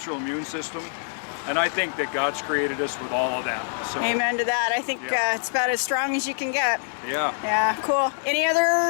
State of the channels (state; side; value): silent; right; digital silence